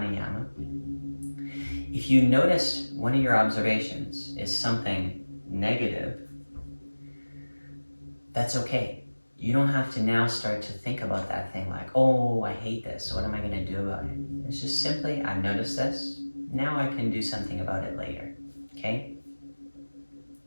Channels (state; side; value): inverted; both; correlation -1.00